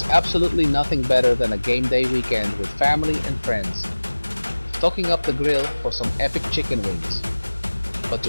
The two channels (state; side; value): inverted; both; correlation -1.00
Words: absolutely nothing better than a game day weekend with family and friends, stocking up the grill for some epic chicken wings. But